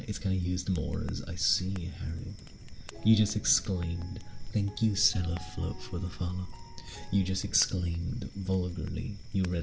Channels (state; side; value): identical; both; correlation 1.00